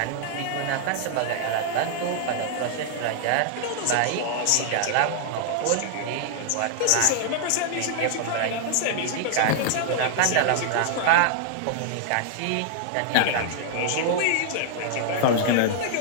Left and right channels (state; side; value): different; both; correlation -0.01